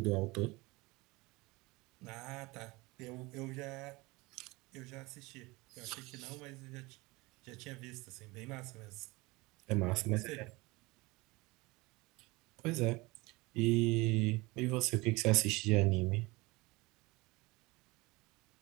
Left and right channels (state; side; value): quieter; left; 23.2 dB